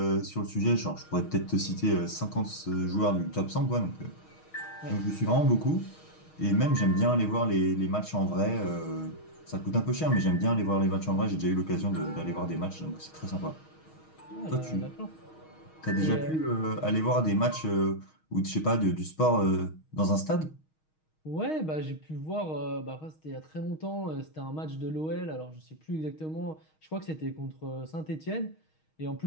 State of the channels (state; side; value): late; right; 6.4 ms